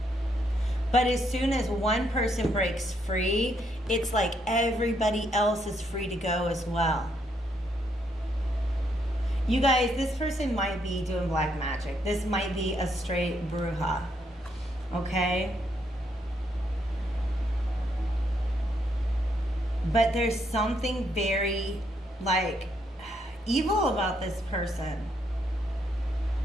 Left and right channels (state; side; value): normal; both; correlation 0.74